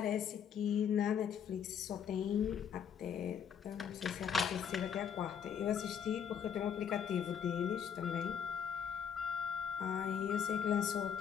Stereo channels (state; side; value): quieter; right; 8.0 dB